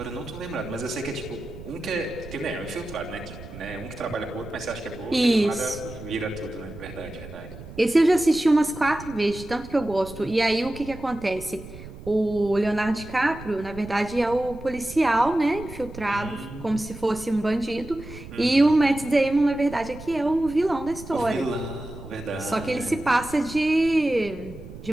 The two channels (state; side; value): noise; right; rumble, 14 dB below the sound